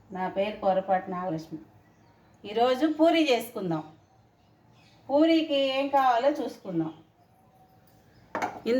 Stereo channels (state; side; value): identical; both; correlation 1.00